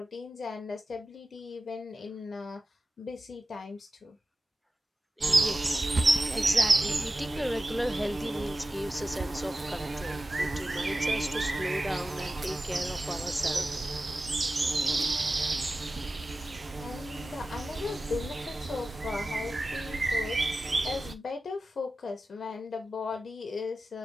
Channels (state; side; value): normal; both; correlation 0.94